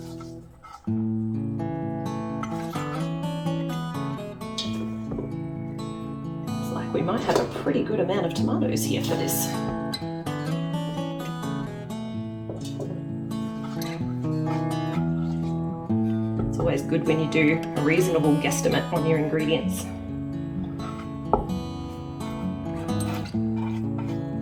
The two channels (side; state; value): both; identical; correlation 1.00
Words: We might have a pretty good amount of tomatoes here for this. It's always good when you do a reasonable guesstimate on your ingredients.